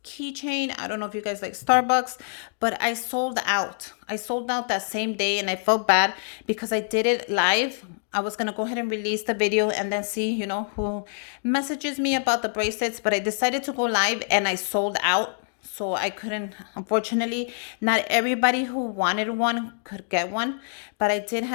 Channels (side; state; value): right; silent; digital silence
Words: keychain. I don't know if you guys like Starbucks, but I sold out. I sold out that same day, and I felt bad because I did it live. I was going to go ahead and release the video and then see, you know, who messages me about the bracelets, but I decided to go live and I sold out. So I couldn't, unfortunately, not everybody who wanted one could get one, but I did